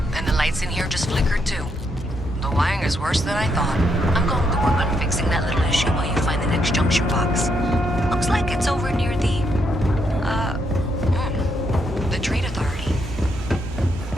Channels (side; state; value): both; normal; correlation 0.77